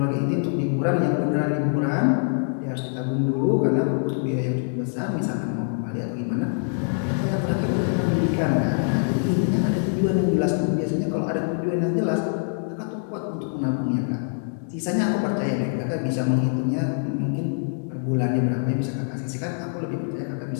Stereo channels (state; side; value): silent; right; digital silence